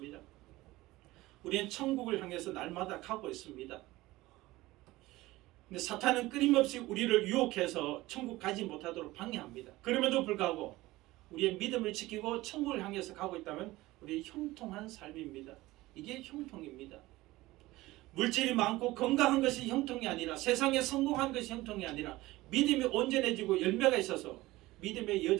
우리는 천국을 향해서 날마다 가고 있습니다. 근데 사탄은 끊임없이 우리를 유혹해서 천국 가지 못하도록 방해합니다. 그럼에도 불구하고 우리의 믿음을 지키고 천국을 향해서 가고 있다면 우리 형통한 삶입니다. 이게 형통입니다. 물질이 많고 건강한 것이 형통이 아니라 세상에 성공한 것이 형통이 아니라 믿음이 온전해지고 열매가 있어서 믿음의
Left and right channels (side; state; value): left; quieter; 18.6 dB